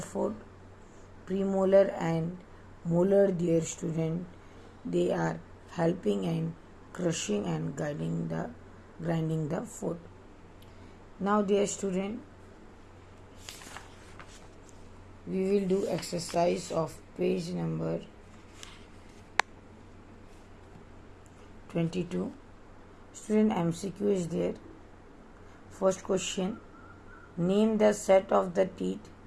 food. Premolar and molar, dear student, they are helping in crushing and grinding the food. Now, dear student, we will do exercise of page number 22. Student, MCQ is there. First question, name the set of the teeth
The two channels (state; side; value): identical; both; correlation 1.00